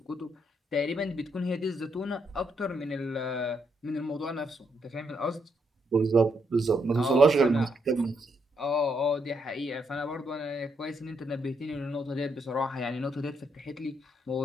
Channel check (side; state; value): both; normal; correlation 0.76